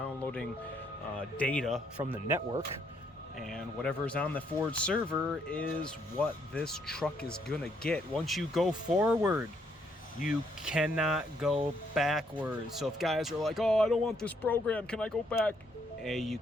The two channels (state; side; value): normal; both; correlation 0.71